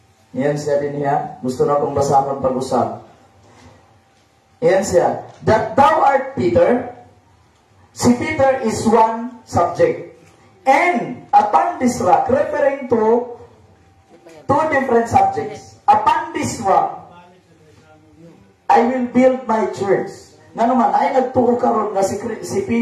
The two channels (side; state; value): both; identical; correlation 1.00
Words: iyan siya din niya, gusto na kong basahon pag-usap. Iyan siya, that thou art Peter, si Peter is one subject. And upon this rock, referring to two different subjects. Upon this rock, I will build my church. Nga naman, ay nagtuo karon nga si